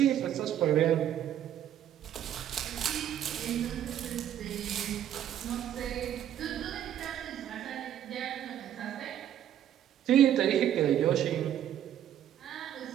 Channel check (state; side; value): quieter; left; 10.7 dB